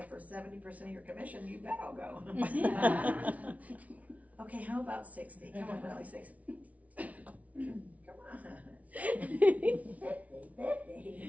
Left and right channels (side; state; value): left; late; 0.069 ms